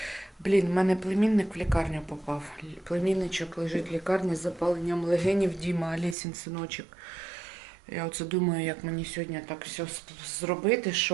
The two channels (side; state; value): left; drops out; at 6.2 s